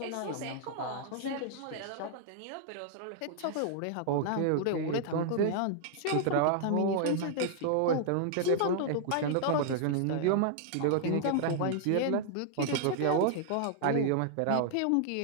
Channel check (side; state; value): both; different; correlation -0.01